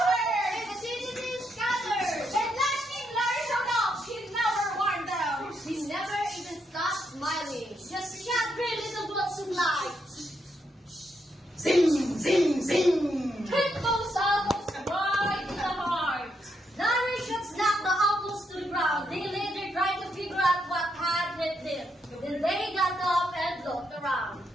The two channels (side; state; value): both; normal; correlation 0.79